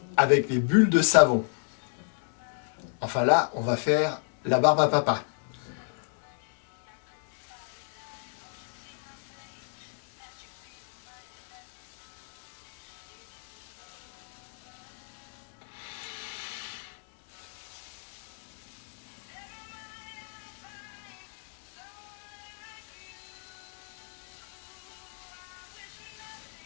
avec les bulles de savon. Enfin là, on va faire la barbe à papa.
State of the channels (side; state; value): right; silent; 57 dB below the other